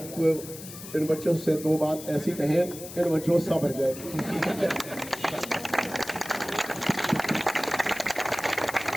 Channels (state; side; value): noise; left; hiss, 13 dB below the sound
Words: इन बच्चों से 2 बात ऐसी कहें, इन बच्चों सा भर जाए।